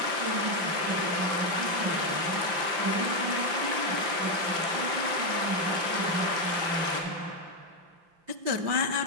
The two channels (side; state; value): left; late; 5.8 ms